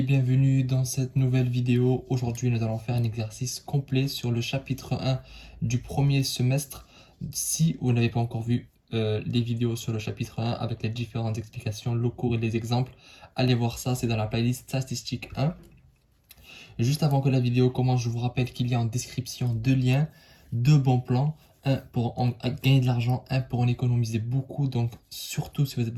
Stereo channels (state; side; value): identical; both; correlation 1.00